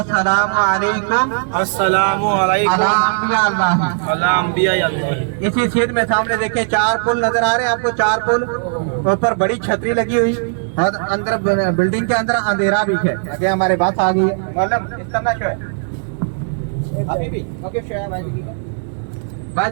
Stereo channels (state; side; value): silent; left; digital silence